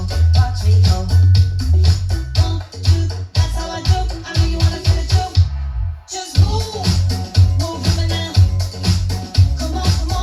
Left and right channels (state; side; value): identical; both; correlation 1.00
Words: watch me go. 1, 2, that's how I do. I know you wanna feel it too. Just move woman now. Come